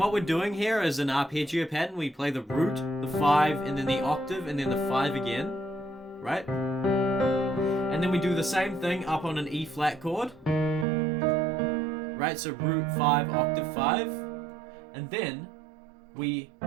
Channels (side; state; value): left; drops out; at 10.9 s